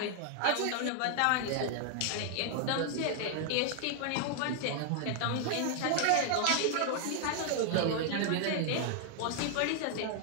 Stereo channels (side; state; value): both; different; correlation 0.00